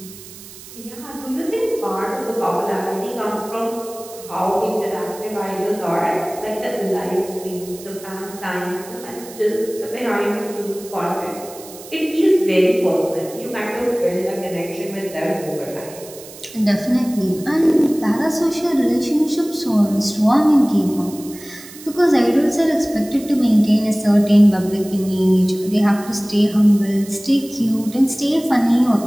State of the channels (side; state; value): right; noise; hiss, 17 dB below the sound